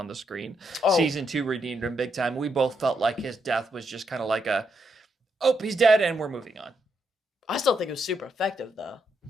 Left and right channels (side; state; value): both; normal; correlation 0.79